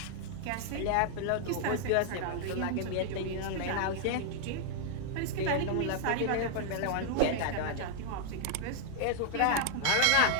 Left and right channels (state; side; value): different; both; correlation 0.00